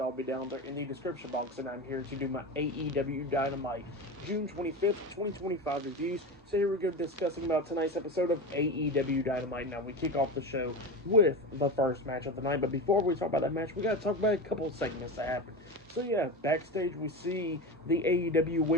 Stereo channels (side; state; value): both; normal; correlation 0.23